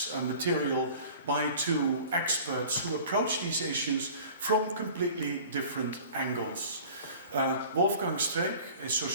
material by two experts who approach these issues from completely different angles. Wolfgang Streeck, a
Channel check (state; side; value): inverted; both; correlation -0.44